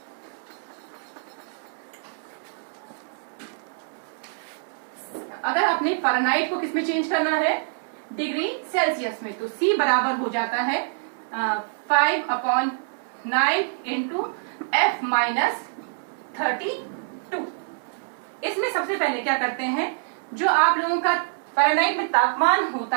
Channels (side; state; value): left; silent; digital silence